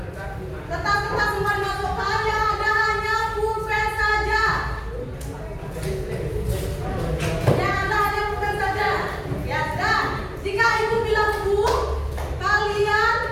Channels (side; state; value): both; identical; correlation 1.00